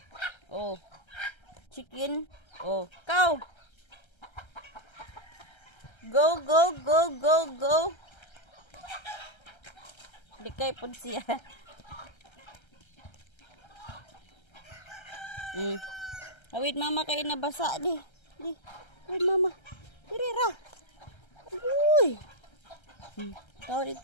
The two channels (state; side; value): late; right; 1.3 ms